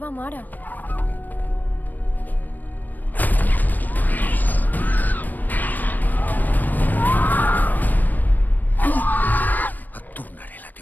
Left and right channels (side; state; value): right; late; 0.087 ms